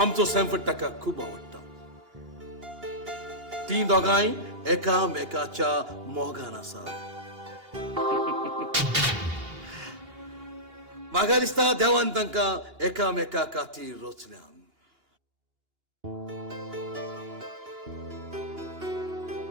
सॅनफर्ड ताका खूब आवडटा. ती दोगांय एकामेकाच्या मोगान आसा. म्हाका दिसता देवान तांकां एकामेका खातीर रचल्यान.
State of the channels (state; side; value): late; left; 2.9 ms